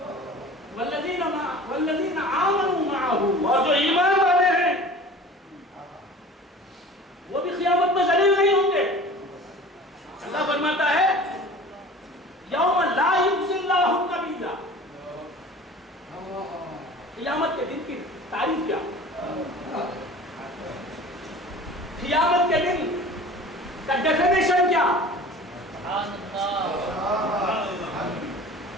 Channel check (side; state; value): both; normal; correlation 0.42